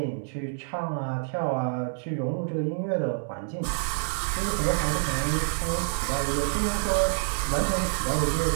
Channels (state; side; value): silent; left; 60 dB below the other